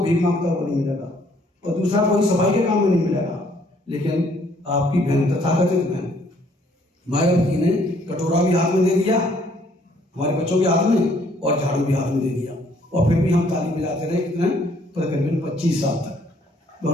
भीख मांगता हुआ नहीं मिलेगा और दूसरा कोई सफाई के काम में नहीं मिलेगा। लेकिन आपकी बहन, तथाकथित बहन मायावती ने कटोरा भी हाथ में दे दिया हमारे बच्चों के हाथ में और झाड़ू भी हाथ में दे दिया, और फिर भी हम ताली बजाते रहे कितने, तकरीबन 25 साल तक। तो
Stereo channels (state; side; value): normal; both; correlation 0.64